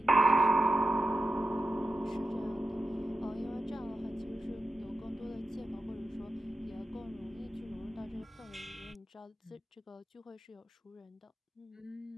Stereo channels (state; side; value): normal; both; correlation 0.90